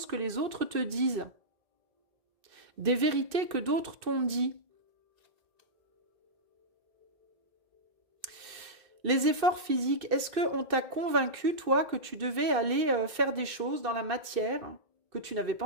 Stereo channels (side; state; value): left; late; 2.6 ms